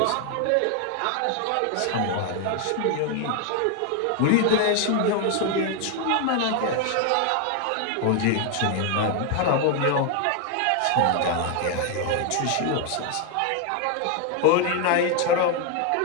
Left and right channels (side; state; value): both; different; correlation 0.01